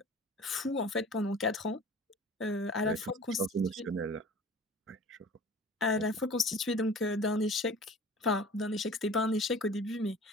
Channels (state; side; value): normal; both; correlation 0.43